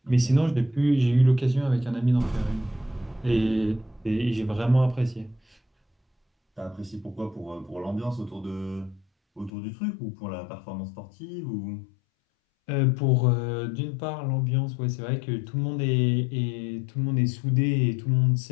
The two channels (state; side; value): drops out; right; at 9.5 s